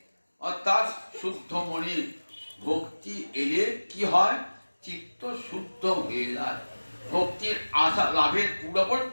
অর্থাৎ শুদ্ধ মনে। ভক্তি এলে কি হয়, চিত্ত শুদ্ধ হয়ে যায়। ভক্তির আশা লাভের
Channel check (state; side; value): inverted; both; correlation -1.00